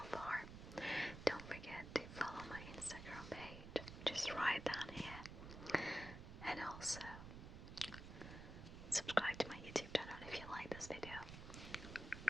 far, don't forget to follow my Instagram page. Just write down here. And also, subscribe to my YouTube channel if you like this video.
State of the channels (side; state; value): right; noise; rumble, 10 dB below the sound